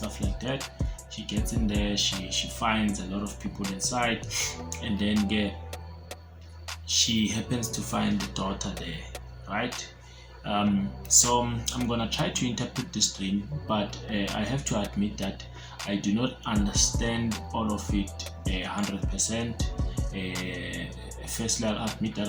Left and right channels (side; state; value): both; identical; correlation 1.00